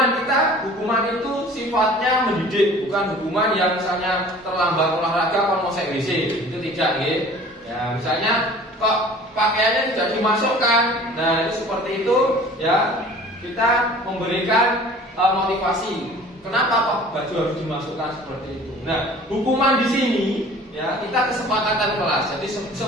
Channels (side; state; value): both; normal; correlation 0.47